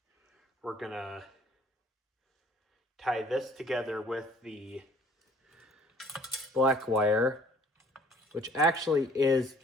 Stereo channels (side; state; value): both; normal; correlation 0.55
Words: We're gonna tie this together with the black wire, which actually is